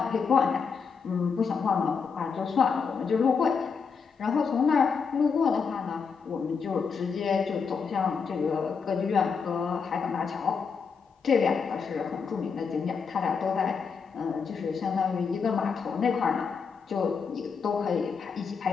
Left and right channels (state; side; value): quieter; right; 5.7 dB